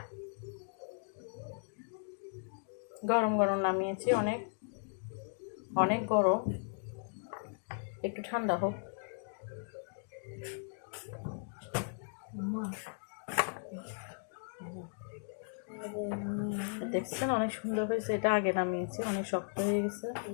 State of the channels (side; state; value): right; silent; digital silence